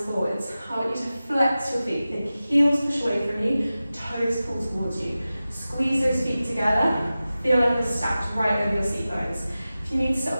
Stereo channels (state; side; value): inverted; both; correlation -0.95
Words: forwards. I want you to flex your feet. The heels push away from you, toes pull towards you. Squeeze those feet together. Feel like you're stacked right over your seat bones. If you need to sit